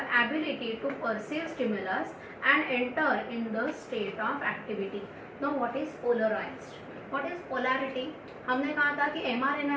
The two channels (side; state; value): both; identical; correlation 1.00